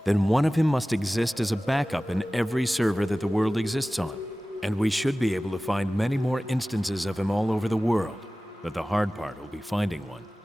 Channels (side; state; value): both; normal; correlation 0.97